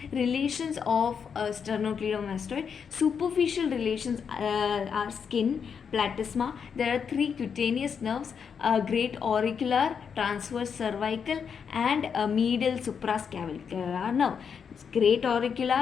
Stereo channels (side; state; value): right; quieter; 6.7 dB